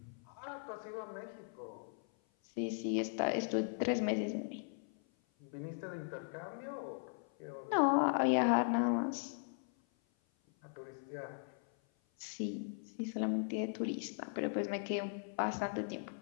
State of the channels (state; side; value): silent; right; 52 dB below the other